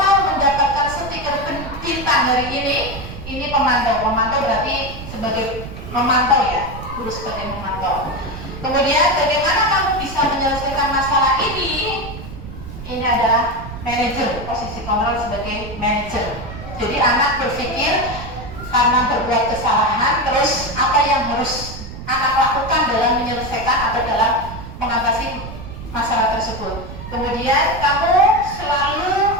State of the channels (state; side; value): noise; right; rumble, 11 dB below the sound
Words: mendapatkan stiker bintang hari ini? Ini pemantau. Pemantau berarti sebagai memantau ya, guru sebagai memantau. Kemudian bagaimana kamu bisa menyelesaikan masalah ini? Ini adalah manajer, posisi kontrol sebagai manajer. Jadi anak berpikir karena berbuat kesalahan, terus apa yang harus anak lakukan dalam menyelesaikan atau dalam mengatasi masalah tersebut. Kemudian kamu selalu